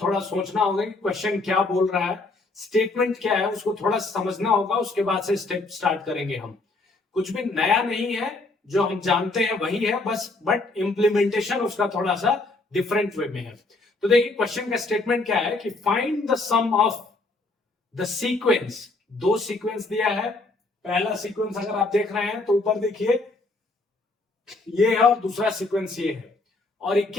सोचना होगा कि क्वेश्चन क्या बोल रहा है, स्टेटमेंट क्या है, उसको थोड़ा समझना होगा। उसके बाद से स्टेप स्टार्ट करेंगे। हम कुछ भी नया नहीं है, जो हम जानते हैं वही है बस, बट इंप्लीमेंटेशन उसका थोड़ा सा डिफरेंट वे में है। तो देखिए क्वेश्चन का स्टेटमेंट क्या है कि find the sum of the sequence. दो सीक्वेंस दिया है। पहला सीक्वेंस अगर आप देख रहे हैं तो ऊपर देखिए ये है, और दूसरा सीक्वेंस ये है, और ये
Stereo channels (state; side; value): quieter; right; 3.3 dB